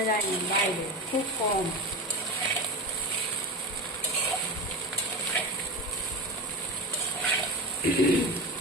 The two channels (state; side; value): normal; both; correlation 0.24